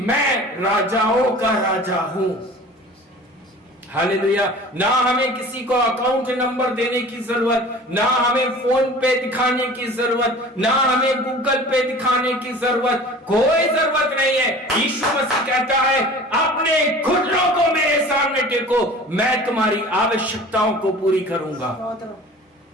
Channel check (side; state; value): both; normal; correlation 0.42